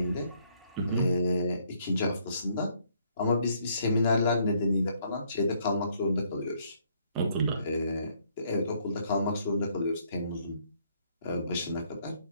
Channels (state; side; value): inverted; both; correlation -0.68